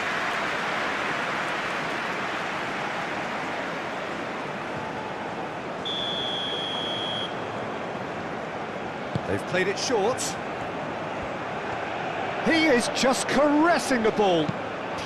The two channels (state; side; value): identical; both; correlation 1.00